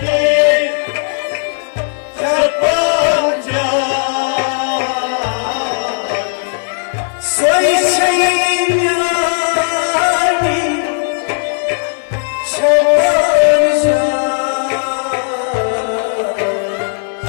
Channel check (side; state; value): right; silent; 70 dB below the other